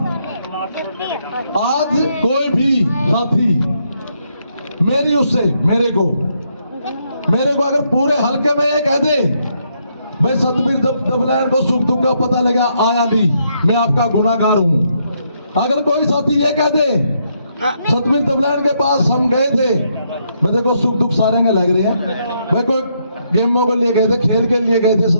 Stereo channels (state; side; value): inverted; both; correlation -0.76